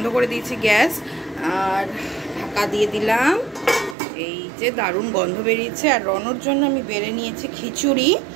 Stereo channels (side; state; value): left; drops out; at 4.0 s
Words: করে দিয়েছি গ্যাস, আর ঢাকা দিয়ে দিলাম। এই যে দারুণ গন্ধ বেরিয়েছে। আর রনর জন্য আমি বেড়ে নিয়েছি খিচুড়ি,